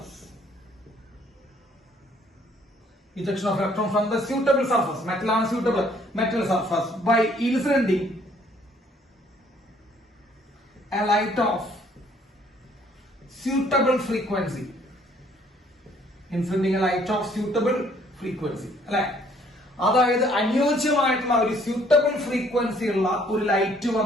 Ejection of electron from the suitable surface. Metal on suitable metal surface by inciding a light of suitable frequency. Inciding a light of suitable frequency. അല്ലെ? അതായത് അനുയോജ്യമായിട്ടുള്ള ഒരു suitable frequency ഉള്ള ഒരു light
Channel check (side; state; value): both; normal; correlation 0.62